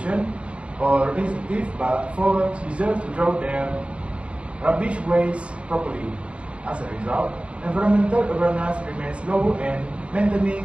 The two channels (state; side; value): late; left; 0.061 ms